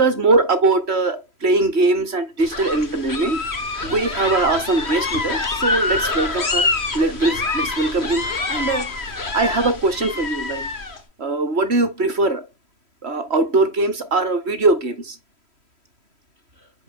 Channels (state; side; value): late; left; 3.1 ms